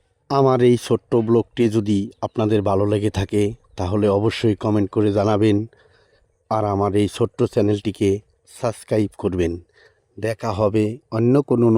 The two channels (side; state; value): both; identical; correlation 1.00